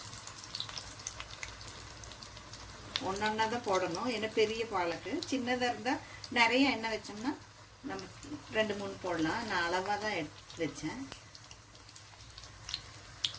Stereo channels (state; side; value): identical; both; correlation 1.00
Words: ஒன்றா தான் போடணும். ஏன்னா பெரிய பாலக்கு. சின்னதாக இருந்தால் நிறைய எண்ணெய் வச்சோம்னா நம்ம 2-3 போடலாம். நான் அளவாக தான் எடுத்து வச்சேன்.